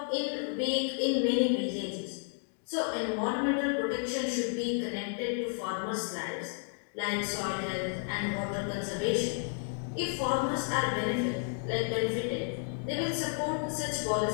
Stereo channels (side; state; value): right; silent; 56 dB below the other